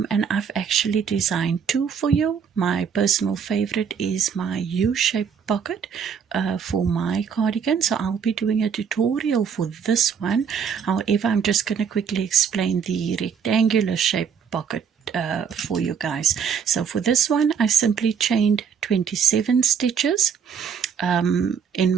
I've actually designed two for you. My personal favorite is my U-shaped pocket for my cardigan, so I'll be doing a tutorial for this one. However, I'm just going to quickly explain the rectangular shaped pocket for you guys. So for this one, I simply chained 27 stitches in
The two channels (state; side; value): quieter; left; 7.0 dB